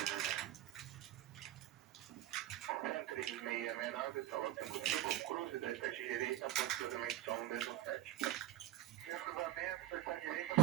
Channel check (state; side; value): quieter; left; 13.6 dB